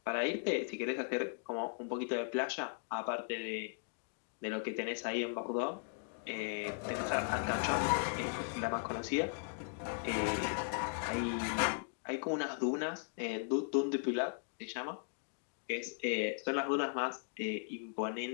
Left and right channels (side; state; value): right; silent; digital silence